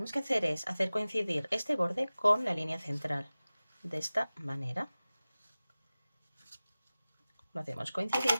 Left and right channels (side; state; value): both; inverted; correlation -0.97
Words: que hacer es hacer coincidir este borde con la línea central. De esta manera. Lo hacemos